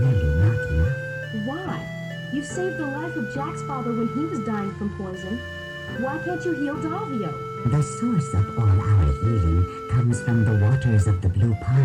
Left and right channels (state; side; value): identical; both; correlation 1.00